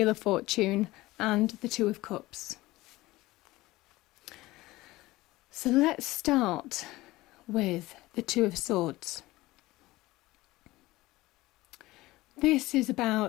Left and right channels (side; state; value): right; quieter; 18.9 dB